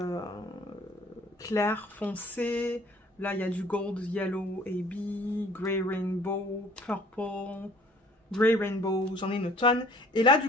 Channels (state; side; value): normal; both; correlation 0.54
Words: clair, foncé. Là, il y a du gold, yellow, AB, grey rainbow, purple, grey rainbow. J'en ai une tonne. Et là, du